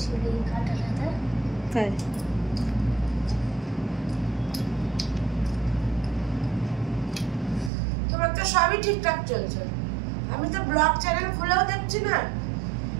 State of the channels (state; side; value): drops out; left; at 7.7 s